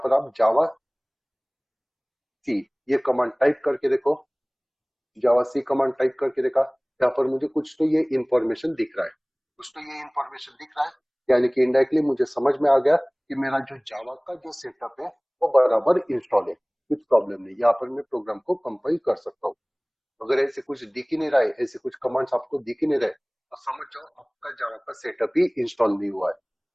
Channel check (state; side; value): identical; both; correlation 1.00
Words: आप जावा सी ये कमांड टाइप करके देखो, जावा सी कमांड टाइप करके देखा, यहाँ पर मुझे कुछ तो ये इंफॉर्मेशन दिख रहा है, कुछ तो ये इंफॉर्मेशन दिख रहा है, यानी कि इनडायरेक्टली मुझे समझ में आ गया कि मेरा जो जावा का जो सेटअप है वो बराबर इंस्टॉल है, कुछ प्रॉब्लम नहीं। यहाँ पर मैं प्रोग्राम को कंपाइल कर सकता हूँ। अगर ऐसे कुछ दिख ही नहीं रहा है, ऐसे कुछ कमांड्स आपको दिख ही नहीं रहे, तो समझ जाओ आपका जावा का सेटअप ही इंस्टॉल नहीं हुआ है।